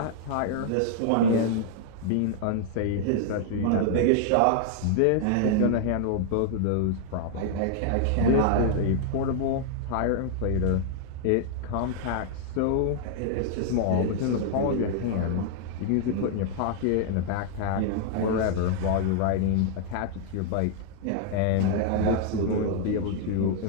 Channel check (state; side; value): different; both; correlation -0.01